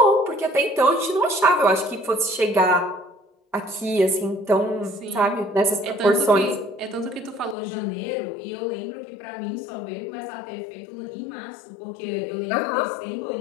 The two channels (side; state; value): right; drops out; at 7.6 s